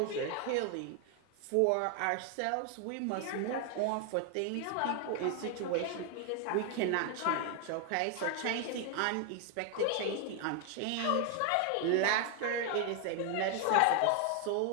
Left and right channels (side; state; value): both; different; correlation 0.00